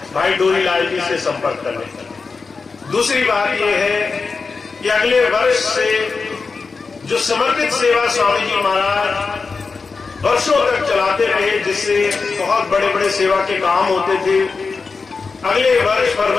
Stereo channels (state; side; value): quieter; right; 4.6 dB